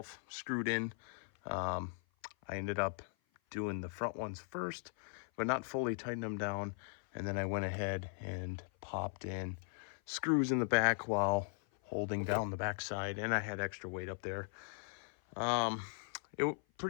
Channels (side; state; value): right; silent; 52 dB below the other